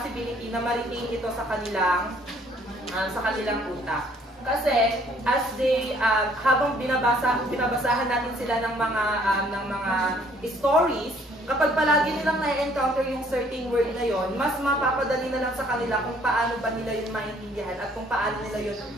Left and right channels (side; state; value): both; normal; correlation 0.61